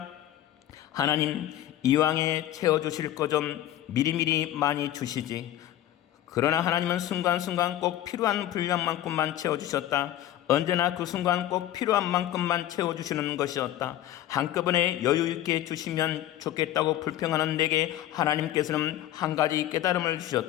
하나님, 이왕에 채워주실 거 좀 미리미리 많이 주시지. 그러나 하나님은 순간순간 꼭 필요한 분량만큼만 채워주셨다. 언제나 그 순간 꼭 필요한 만큼만 채워주시는 것이었다. 한꺼번에 여유있게 주시면 좋겠다고 불평하는 내게 하나님께서는 한 가지 깨달음을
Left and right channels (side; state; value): right; quieter; 12.8 dB